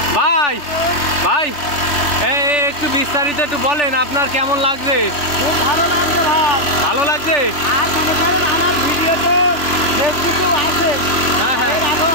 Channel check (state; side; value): late; right; 3.4 ms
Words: ভাই ভাই একটু বিস্তারিত একটু বলেন, আপনার কেমন লাগছে? খুব ভালো লাগছে ভাই। ভালো লাগছে? আর মনে করেন আমার ভিডিও তো ফেসবুকেও আছে। হ্যাঁ হ্যাঁ, এর আগেও